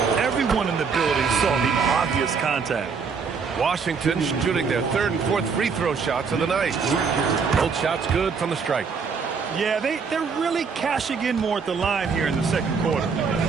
Everyone in the building saw the obvious contact. Washington shooting their third and fourth free throw shots of the night. Both shots good from the stripe. Yeah, they're really cashing in more at the line here in the second quarter.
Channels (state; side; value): quieter; left; 5.5 dB